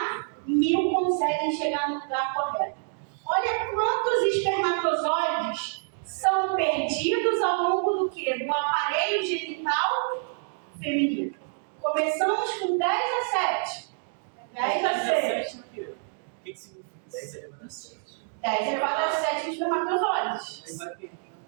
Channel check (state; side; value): silent; left; digital silence